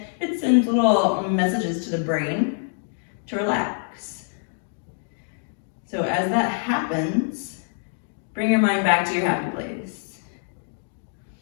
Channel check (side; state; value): right; silent; digital silence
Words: it sends little messages to the brain to relax. So as that happens, bring your mind back to your happy place.